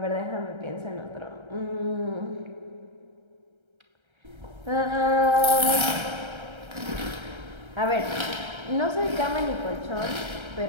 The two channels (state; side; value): late; left; 1.3 ms